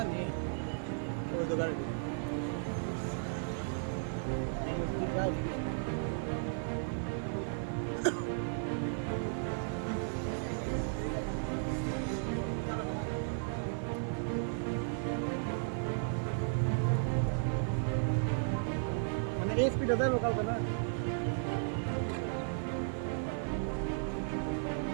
ওই তো গাড়ি মানে এই স্পিডে যাবো কালকে না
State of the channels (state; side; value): silent; left; 54 dB below the other